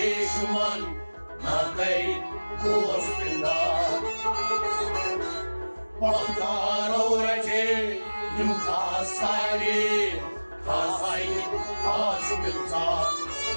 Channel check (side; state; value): both; inverted; correlation -1.00